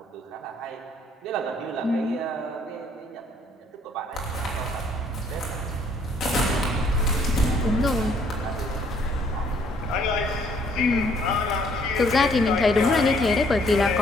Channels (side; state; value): both; normal; correlation 0.64